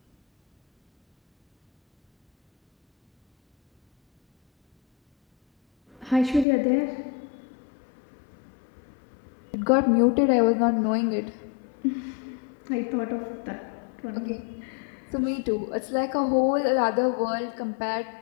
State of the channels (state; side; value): drops out; right; at 6.5 s